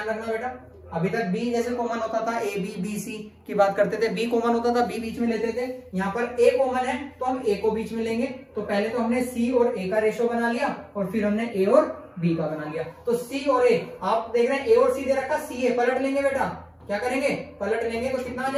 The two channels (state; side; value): identical; both; correlation 1.00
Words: रखना बेटा, अभी तक बी जैसे कॉमन होता था, ए बी बी सी की बात करते थे, बी कॉमन होता था, बी बीच में लेते थे। यहाँ पर ए कॉमन है तो हम ए को बीच में लेंगे। तो पहले तो हमने सी और ए का रेशो बना लिया, और फिर हमने ए और बी का बना लिया। तो सी और ए, आप देख रहे हैं ए और सी दे रखा, सी ए पलट लेंगे बेटा, क्या करेंगे पलट लेंगे, तो कितना आ